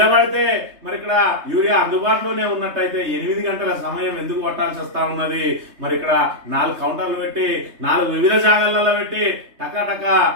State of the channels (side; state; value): left; late; 3.3 ms